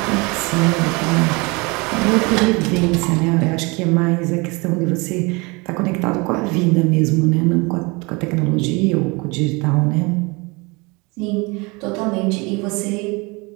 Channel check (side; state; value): left; quieter; 27.0 dB